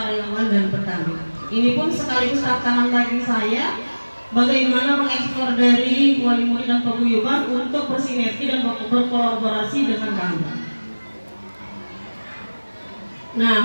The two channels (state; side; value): inverted; both; correlation -1.00